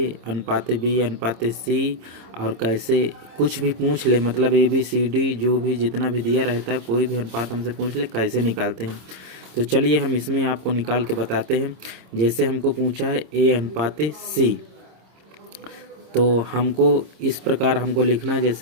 अनुपाते b अनुपाते c और कैसे कुछ भी पूछ ले, मतलब a b c d जो भी जितना भी दिया रहता है कोई भी अनुपात हमसे पूछ ले कैसे निकालते हैं। तो चलिए हम इसमें आपको निकाल के बताते हैं। जैसे हमको पूछा है a अनुपाते c, तो हमको इस प्रकार हमको लिखना है।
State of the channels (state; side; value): late; left; 26 ms